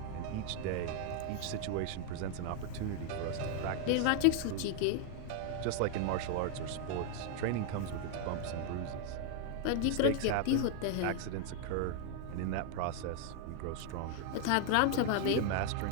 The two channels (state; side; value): different; both; correlation 0.00